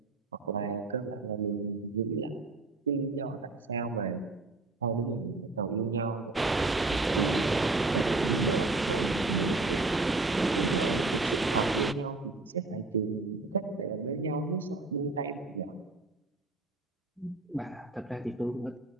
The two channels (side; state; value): left; quieter; 3.3 dB